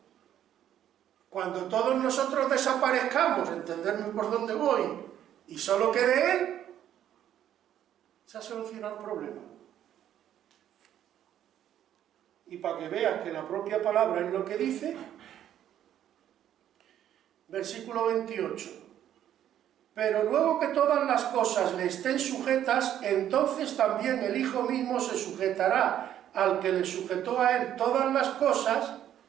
Cuando todos nosotros desaparezcamos, entenderme por dónde voy, y solo quede Él, se ha solucionado el problema. Y para que veas que la propia palabra es lo que dice, versículo 28. Pero luego que todas las cosas le estén sujetas, entonces también el Hijo mismo se sujetará al que le sujetó a Él todas las cosas.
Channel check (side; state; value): left; quieter; 10.9 dB